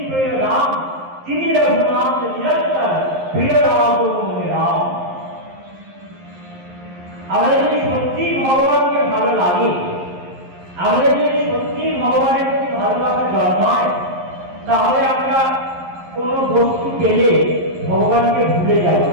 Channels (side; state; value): left; late; 11 ms